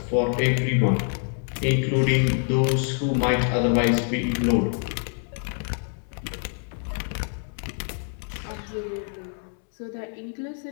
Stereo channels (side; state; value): right; silent; 55 dB below the other